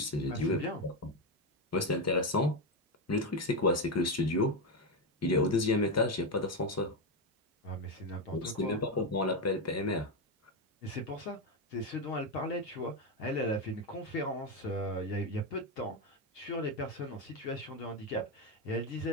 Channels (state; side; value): normal; both; correlation 0.09